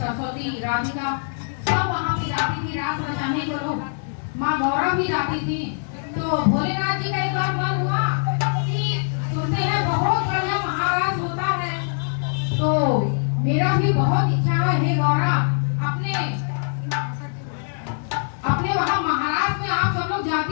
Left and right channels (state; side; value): silent; right; digital silence